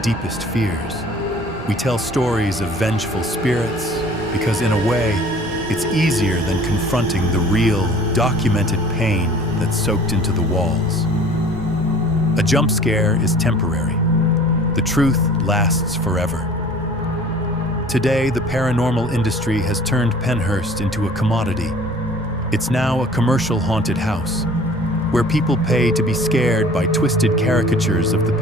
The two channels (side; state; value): both; normal; correlation 0.49